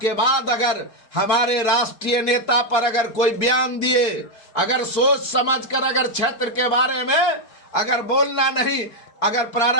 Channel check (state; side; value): late; right; 4.5 ms